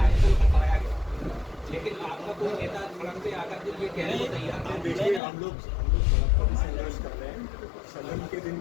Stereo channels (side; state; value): right; drops out; at 5.2 s